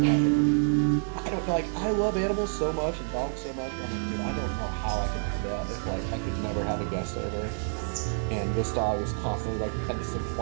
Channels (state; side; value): silent; left; digital silence